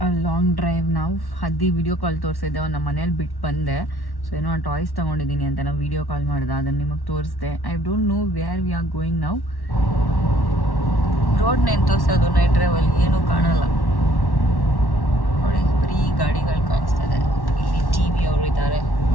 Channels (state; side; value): late; right; 1.1 ms